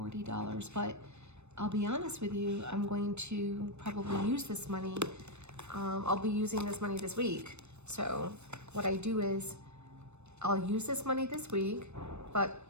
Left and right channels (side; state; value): left; late; 0.81 ms